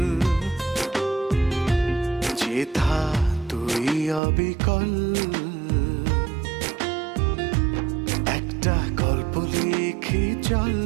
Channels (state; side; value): drops out; left; at 4.2 s